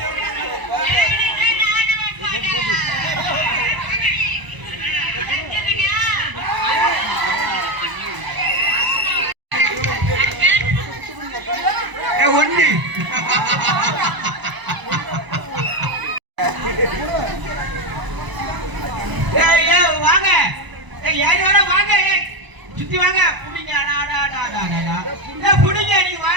ஒண்ணு வாங்க யாரு வர வாங்க சுத்தி வாங்க புடிங்க புடிங்க நீ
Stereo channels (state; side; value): late; left; 1.0 ms